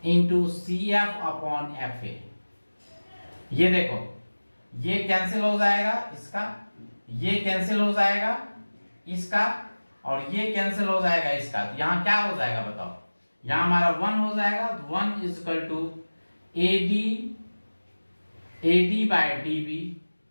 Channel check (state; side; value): inverted; both; correlation -1.00